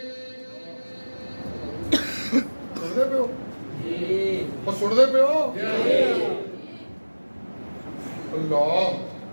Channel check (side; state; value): both; inverted; correlation -1.00